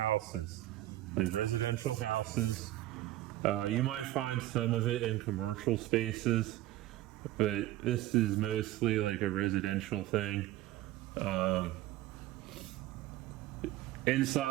like residential houses. You might find some of it in commercial spaces, but this is mostly like a residential thing.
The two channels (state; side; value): quieter; left; 15.4 dB